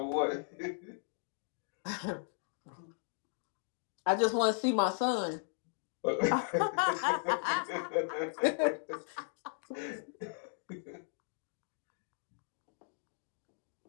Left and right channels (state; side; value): silent; right; digital silence